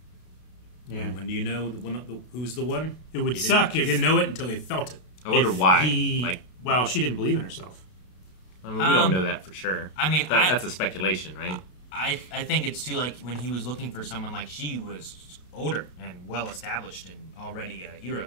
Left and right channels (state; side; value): late; right; 32 ms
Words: Yeah. And when do you know who's the one? It would suck if he didn't know it until he felt it. I wonder why. Well, she didn't believe in herself. I mean, we don't know that for sure. I mean, that's a speculation, right? I think it's too when he was looking for someone she was older and well established and already a hero.